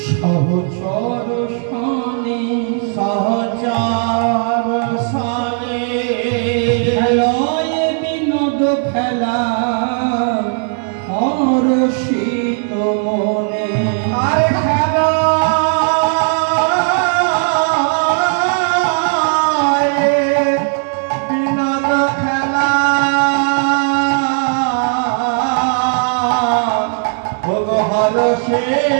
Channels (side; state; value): left; silent; 57 dB below the other